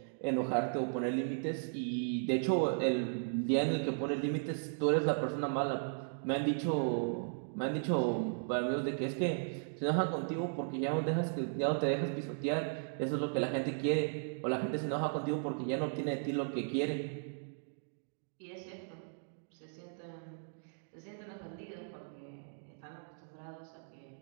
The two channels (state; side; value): silent; left; digital silence